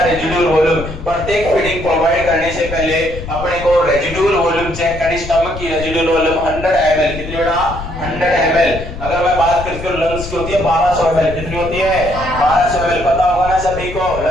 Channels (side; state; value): left; noise; rumble, 10 dB below the sound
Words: residual volume. प्रत्येक फीडिंग प्रोवाइड करने से पहले अपने को रेजिडुअल वॉल्यूम चेक करनी। स्टमक की रेजिडुअल वॉल्यूम 100 ml। कितनी बेटा? 100 ml। अगर मैं बात करती हूं लंग्स की होती है 1200 ml। कितनी होती है? 1200 ml। पता होगा ना सभी को,